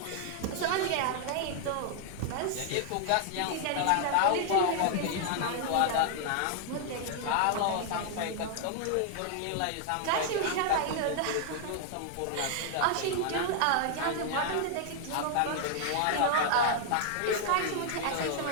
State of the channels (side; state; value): both; different; correlation 0.00